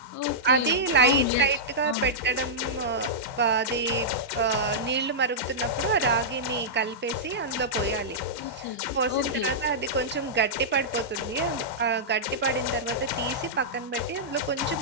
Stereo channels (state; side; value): normal; both; correlation -0.11